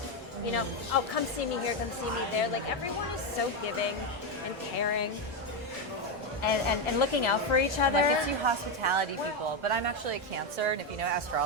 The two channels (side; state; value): both; normal; correlation 0.07